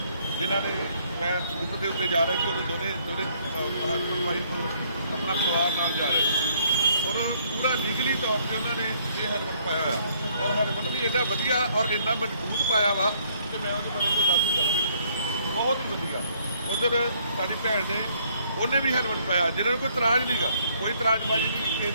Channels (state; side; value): inverted; both; correlation -0.66